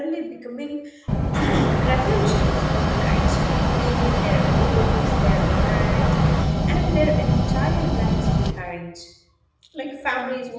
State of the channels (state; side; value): identical; both; correlation 1.00